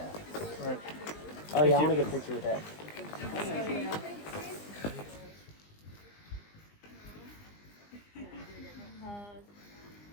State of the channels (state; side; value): late; right; 20 ms